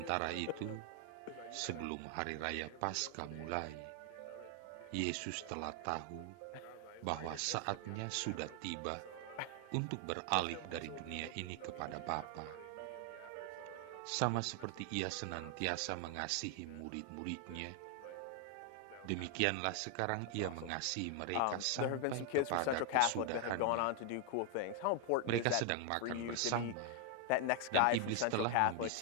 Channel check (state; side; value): different; both; correlation 0.00